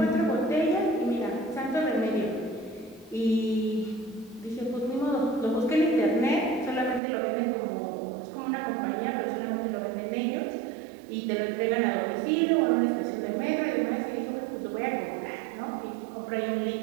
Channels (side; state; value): left; drops out; at 7.0 s